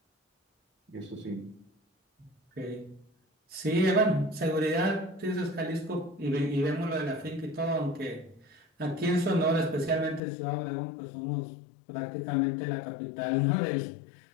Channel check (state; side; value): drops out; right; at 10.2 s